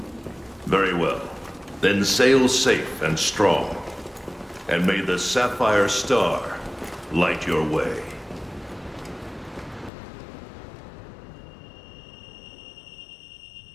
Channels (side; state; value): right; drops out; at 9.9 s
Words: Very well. Then sail safe and strong, and may the Sapphire Star light your way.